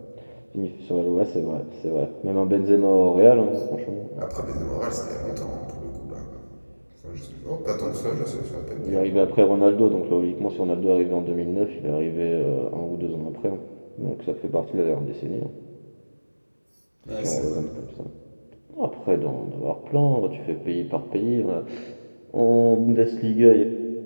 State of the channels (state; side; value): inverted; both; correlation -1.00